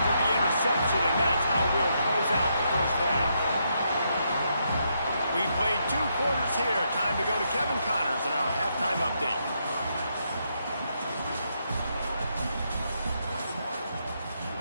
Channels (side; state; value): both; inverted; correlation -0.78